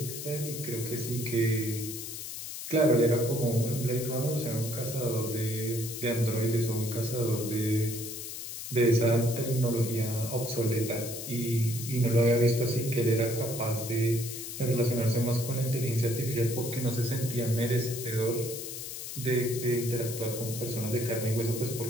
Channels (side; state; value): left; noise; hiss, 8 dB below the sound